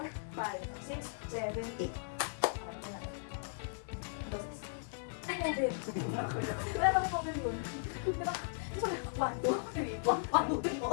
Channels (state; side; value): silent; right; digital silence